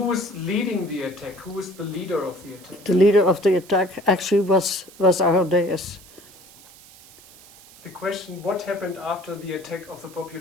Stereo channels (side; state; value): right; noise; hiss, 22 dB below the sound